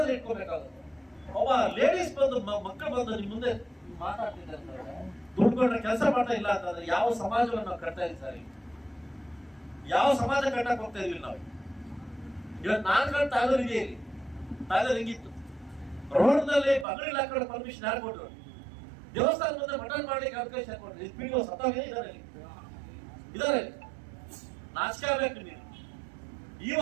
ಇಟ್ಕೋಬೇಕಾಗುತ್ತೆ. ಒಬ್ಬ ಲೇಡೀಸ್ ಬಂದು ಮಕ್ಕಳು ಬಂದು ನಿಮ್ ಮುಂದೆ ಮಾತಾಡ್ತಿದ್ದಾರೆ ಅಂತಂದ್ರೆ, ದುಡ್ಡು ಕೊಟ್ಟರೆ ಕೆಲಸ ಮಾಡ್ತಾ ಇಲ್ಲ ಅಂತಂದ್ರೆ ಯಾವ ಸಮಾಜವನ್ನು ನಾವು ಕಟ್ತಾ ಇದ್ದೀವಿ ಸರ್? ಯಾವ ಸಮಾಜ ಕಟ್ಟಕ್ ಹೋಗ್ತಾ ಇದೀವಿ ನಾವು? ಇವತ್ತು ನಾನು ತಾಯ್ಲೂರು ಇದೆ, ಇಲ್ಲಿ ತಾಯ್ಲೂರು ಹಿಂಗಿತ್ತು. ರೋಡ್ನಲ್ಲಿ ಬಂಗಡಿ ಹಾಕೊಂಡು ಪರ್ಮಿಷನ್ ಯಾರು ಕೊಟ್ಟರು? ದೇವಸ್ಥಾನ ಮುಂದೆ ಮಟನ್ ಮಾಡ್ಲಿಕ್ಕೆ ಅವಕಾಶ ಕೊಟ್ಟರು. ಇದು ಪಿಡಿಒ ಸತ್ತಾಗ ಇದಾರೆ. ನಾಚಿಕೆ ಆಗ್ಬೇಕು ನೀವು.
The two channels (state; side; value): drops out; left; at 16.9 s